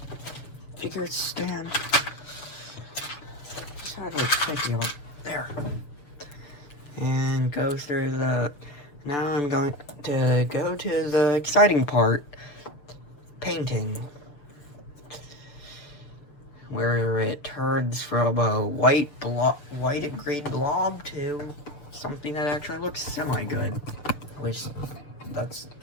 figure stand. There. And go through the. Now I'm going to go to the exciting part, painting, where it turns from a white and green blob to something that actually looks semi-good. At least that's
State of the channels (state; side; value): late; right; 6.9 ms